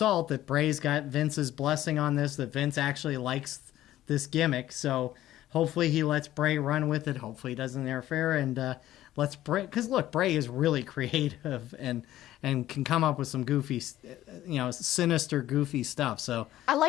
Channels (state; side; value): quieter; right; 13.9 dB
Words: that Bray's got Vince's blessing on this, that Vince actually likes this gimmick. So hopefully he lets Bray run with it. Hopefully he doesn't interfere and let's Bray, because look, Bray is really creative and can come up with some goofy, sinister, goofy stuff. So I